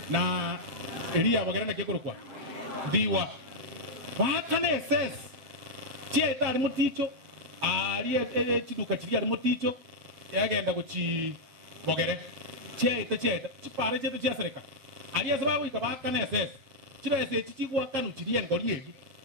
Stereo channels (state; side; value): late; left; 7.4 ms